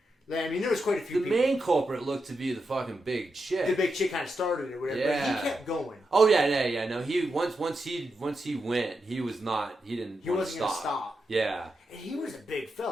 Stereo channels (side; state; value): both; normal; correlation 0.86